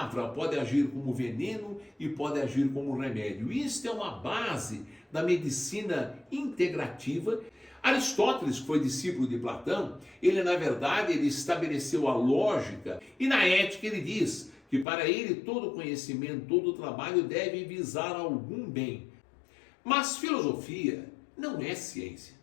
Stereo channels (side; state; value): right; drops out; at 14.9 s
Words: pode agir como veneno e pode agir como remédio. Isso é uma base da medicina integrativa. Aristóteles, que foi discípulo de Platão, ele na verdade ele estabeleceu a lógica, e na ética ele diz que para ele todo conhecimento, todo trabalho deve visar algum bem. Mas filosofia não é ciência,